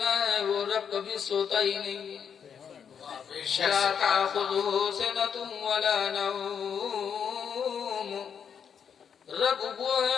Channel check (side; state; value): right; quieter; 7.5 dB